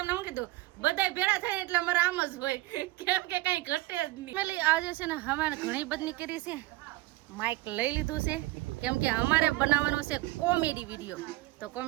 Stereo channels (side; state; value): left; quieter; 19.6 dB